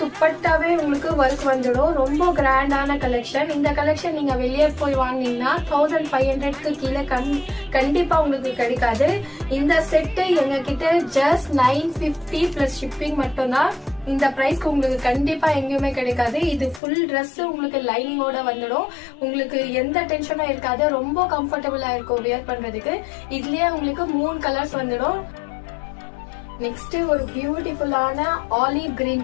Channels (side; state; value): right; drops out; at 16.8 s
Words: துப்பட்டாவே உங்களுக்கு ஒர்க் வந்துடும். ரொம்ப கிராண்டான கலெக்ஷன். இந்த கலெக்ஷன் நீங்க வெளியே போய் வாங்கினீங்கன்னா 1500க்கு கீழே கண்டிப்பா உங்களுக்கு கிடைக்காது. இந்த செட்டு எங்க கிட்ட ஜஸ்ட் 950 பிளஸ் ஷிப்பிங் மட்டும்தான். இந்த பிரைஸ்க்கு உங்களுக்கு கண்டிப்பா எங்கேயுமே கிடைக்காது. இது ஃபுல் ட்ரெஸ் உங்களுக்கு லைனிங்கோட வந்துடும். உங்களுக்கு எந்த டென்ஷனும் இருக்காது. ரொம்ப கம்ஃபர்டபுளா இருக்கும் வியர் பண்றதுக்கு. இதுலயே உங்களுக்கு 3 கலர்ஸ் வந்துடும். நெக்ஸ்ட் ஒரு பியூட்டிஃபுல்லான ஆலிவ் கிரீன்